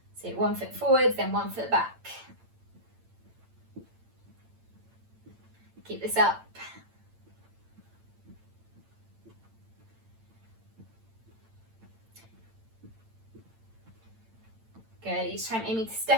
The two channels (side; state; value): left; late; 8.9 ms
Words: So 1 foot forwards, then 1 foot back. Keep this up. Good, each time aiming to